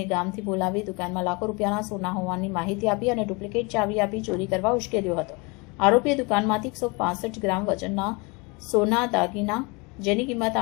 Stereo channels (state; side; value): quieter; right; 28.3 dB